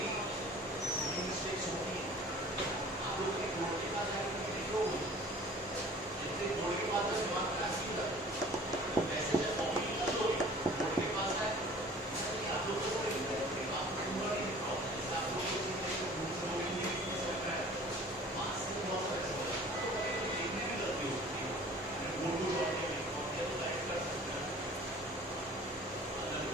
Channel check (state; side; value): normal; both; correlation 0.47